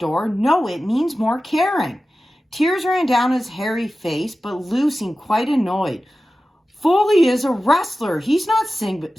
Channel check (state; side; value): normal; both; correlation 0.94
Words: No, it means more caring. Tears ran down his hairy face, but Lou seemed quite annoyed. "Foley is a wrestler. He's not